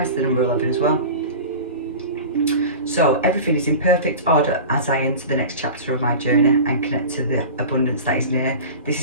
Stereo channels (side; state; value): both; inverted; correlation -0.33